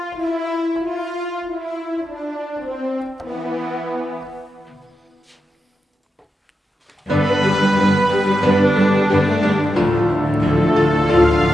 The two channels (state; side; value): normal; both; correlation 0.89